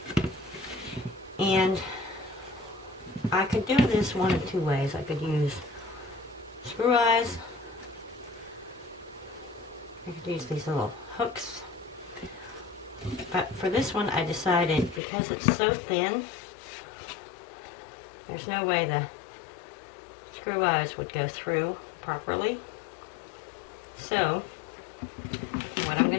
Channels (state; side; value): drops out; right; at 15.0 s